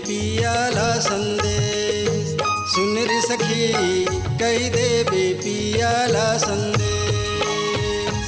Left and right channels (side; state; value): both; identical; correlation 1.00